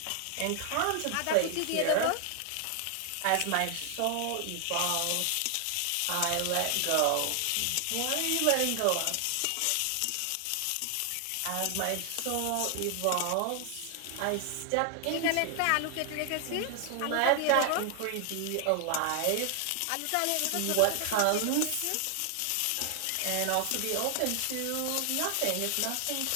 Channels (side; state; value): both; different; correlation 0.00